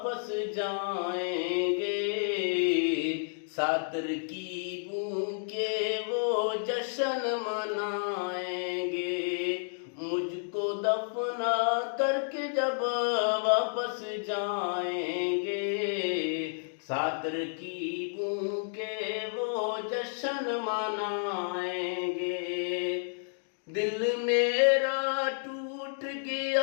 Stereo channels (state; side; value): silent; right; digital silence